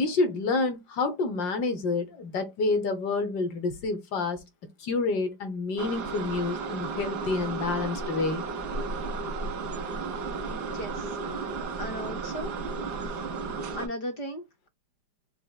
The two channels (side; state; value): right; late; 5.0 ms